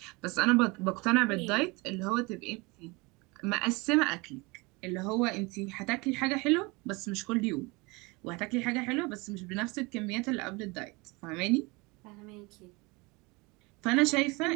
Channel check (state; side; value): quieter; left; 25.8 dB